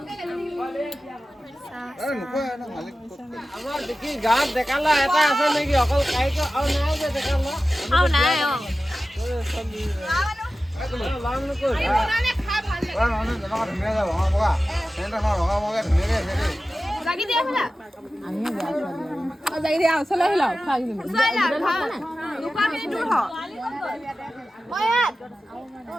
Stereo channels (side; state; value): both; normal; correlation 0.94